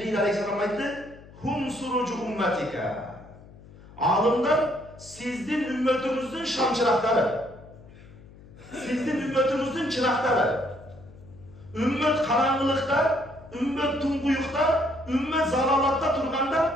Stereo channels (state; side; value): noise; left; hum, 21 dB below the sound